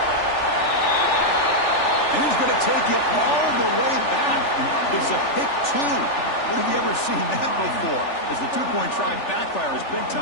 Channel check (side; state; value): right; late; 3.4 ms